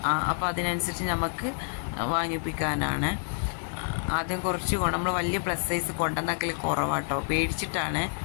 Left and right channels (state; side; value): silent; right; digital silence